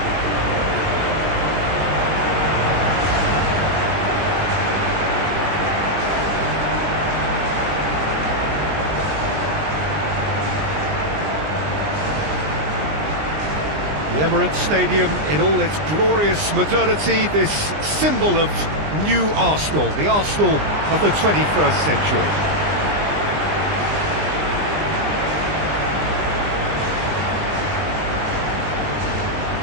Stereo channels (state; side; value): late; left; 20 ms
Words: The Emirates Stadium in all its glorious modernity, this symbol of new Arsenal, the Arsenal of the 21st century.